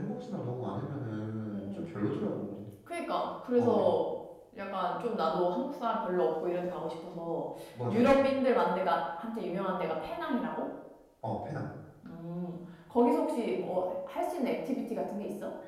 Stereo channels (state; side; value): identical; both; correlation 1.00